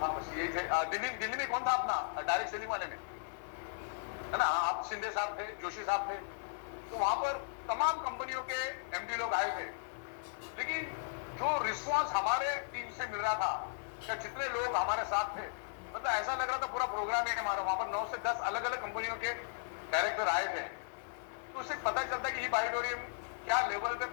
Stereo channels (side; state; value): right; silent; 54 dB below the other